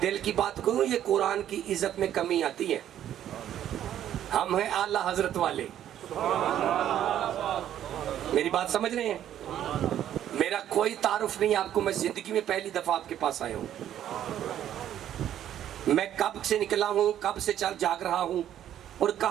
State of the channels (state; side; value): quieter; left; 11.0 dB